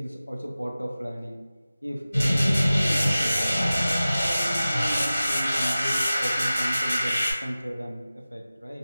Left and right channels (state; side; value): inverted; both; correlation -0.96